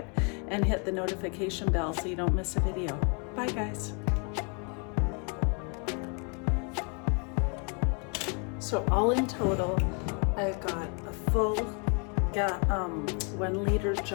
and hit the notification bell so you don't miss a video. Bye guys. So all in total, I've got a full 1 liter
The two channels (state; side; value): quieter; right; 35.9 dB